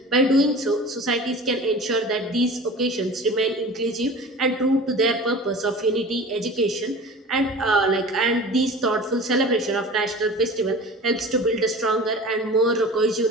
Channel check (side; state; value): both; normal; correlation 0.38